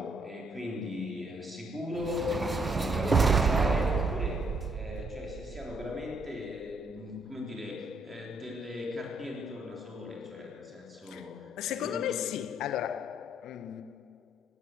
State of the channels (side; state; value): both; normal; correlation 0.70